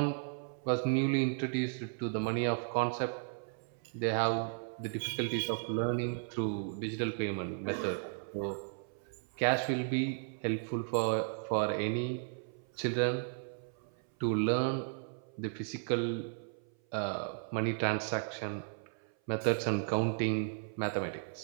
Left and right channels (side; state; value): left; silent; 54 dB below the other